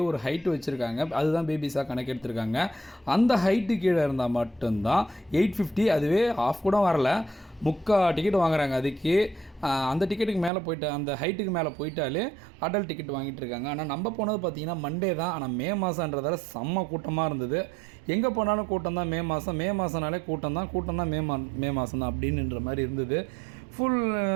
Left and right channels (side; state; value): left; drops out; at 10.5 s